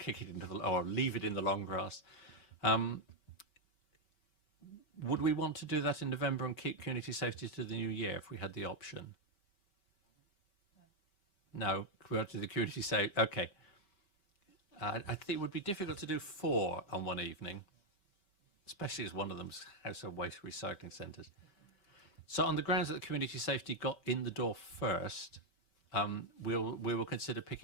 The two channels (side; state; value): right; late; 5.2 ms